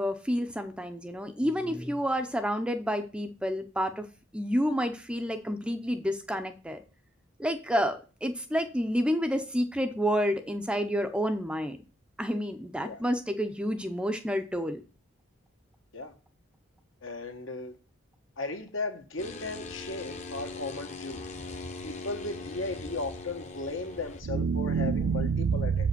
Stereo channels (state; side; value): normal; both; correlation 0.71